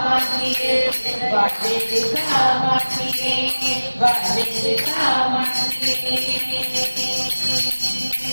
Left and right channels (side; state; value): both; inverted; correlation -1.00